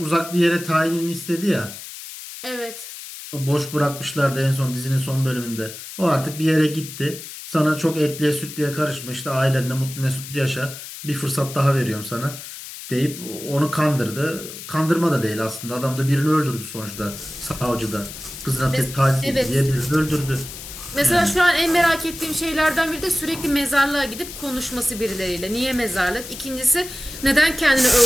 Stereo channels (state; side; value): noise; left; hiss, 12 dB below the sound